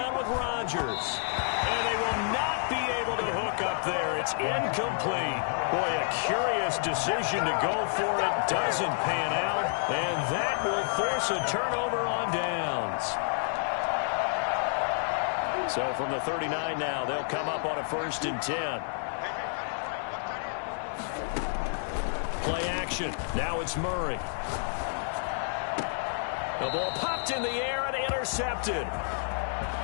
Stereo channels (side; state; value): right; silent; digital silence